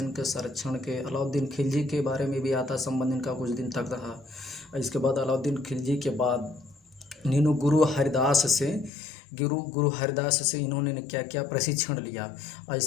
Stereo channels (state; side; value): drops out; right; at 8.9 s